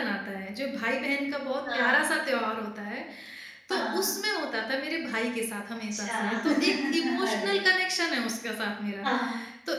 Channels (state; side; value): identical; both; correlation 1.00